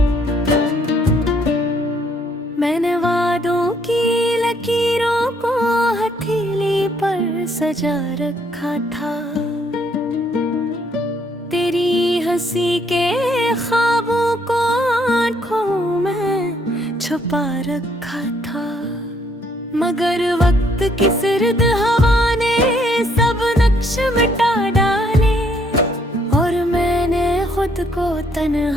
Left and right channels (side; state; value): both; normal; correlation 0.68